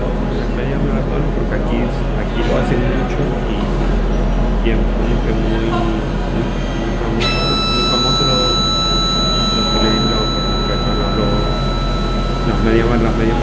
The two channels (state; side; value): identical; both; correlation 1.00